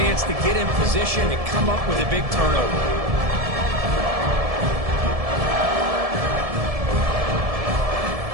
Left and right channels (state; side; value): late; left; 1.7 ms